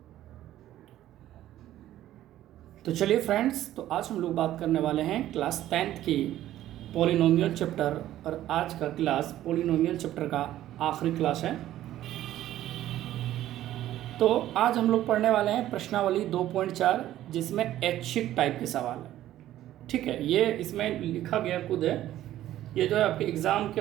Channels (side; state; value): left; quieter; 13.3 dB